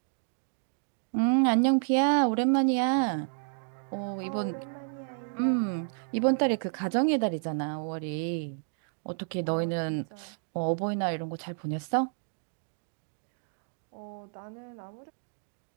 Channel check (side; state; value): left; silent; digital silence